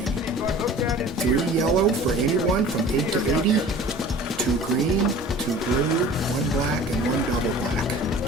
3 yellow for anyone from 8 to 80, 2 green, 2 blue, 1 black, and 1 double black.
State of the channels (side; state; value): both; normal; correlation 0.44